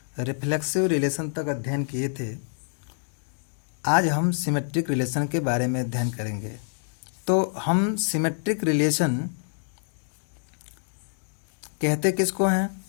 रिफ्लेक्सिव रिलेशन तक अध्ययन किए थे। आज हम सिमेट्रिक रिलेशन के बारे में अध्ययन करेंगे। तो हम सिमेट्रिक रिलेशन कहते किसको हैं?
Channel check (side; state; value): right; silent; digital silence